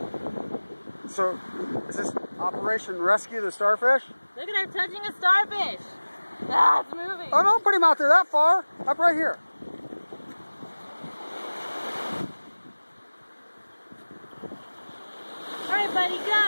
So, is this Operation Rescue the Starfish? Look at her touching a starfish. Ah, it's moving. Oh, don't put him out there that far. Up right here. All right, buddy,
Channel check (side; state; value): both; inverted; correlation -1.00